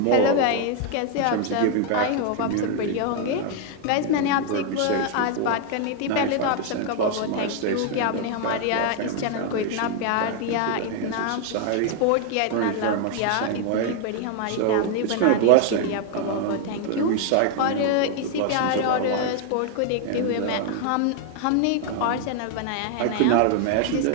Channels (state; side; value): different; both; correlation 0.00